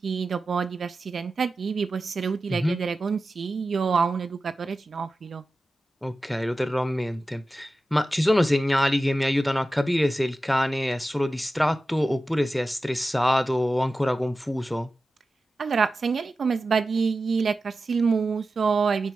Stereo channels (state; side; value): normal; both; correlation 0.93